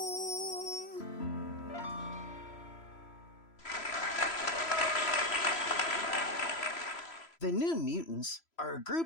The New Mutants are a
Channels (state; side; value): late; right; 3.0 ms